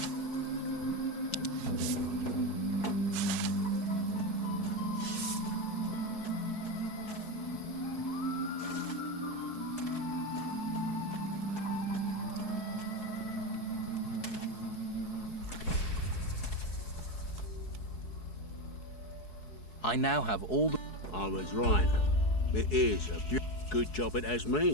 I now have all the... I was right. It is a good job it has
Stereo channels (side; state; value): right; late; 4.7 ms